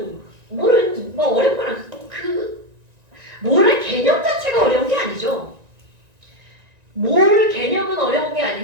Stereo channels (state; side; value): late; left; 1.9 ms